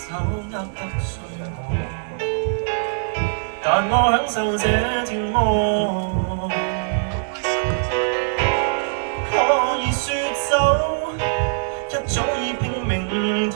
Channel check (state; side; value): silent; left; digital silence